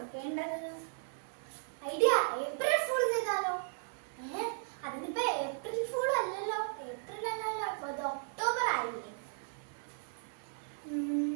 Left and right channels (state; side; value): silent; left; digital silence